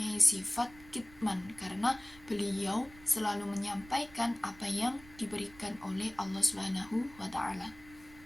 sifat kitman karena beliau selalu menyampaikan apa yang diberikan oleh Allah Subhanahu wa Ta'ala.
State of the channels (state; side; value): noise; right; rumble, 21 dB below the sound